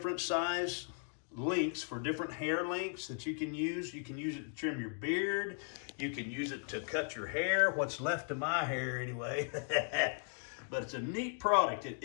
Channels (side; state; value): right; silent; 53 dB below the other